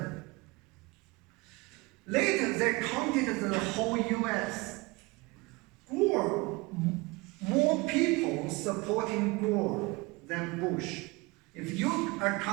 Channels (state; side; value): quieter; left; 24.5 dB